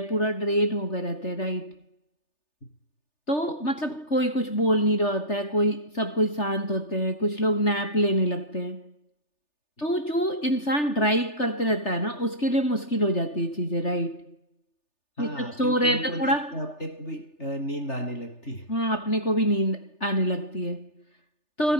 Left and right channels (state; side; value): late; right; 3.4 ms